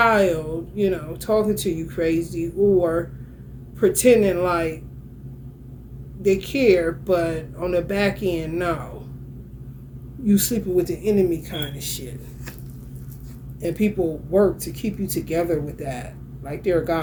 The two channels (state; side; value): identical; both; correlation 1.00